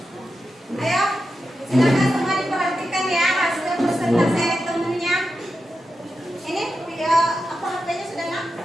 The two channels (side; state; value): both; normal; correlation 0.89